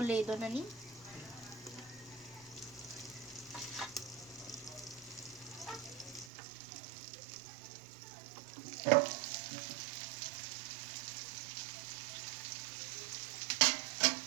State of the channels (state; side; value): drops out; left; at 6.3 s